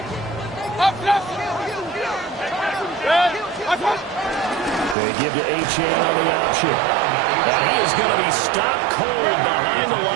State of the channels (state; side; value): drops out; left; at 5.0 s